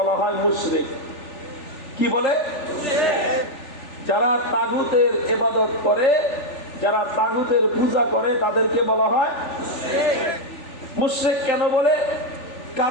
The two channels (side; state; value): right; late; 3.4 ms